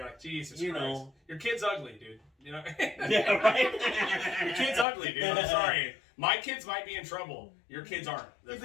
like, Jesus Christ. Know. Your kid's ugly, dude. You know? Yeah, right? Your kid's ugly, dude. I'm sorry. My kids might be in trouble. Your kids aren't. They're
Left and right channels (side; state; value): right; drops out; at 4.9 s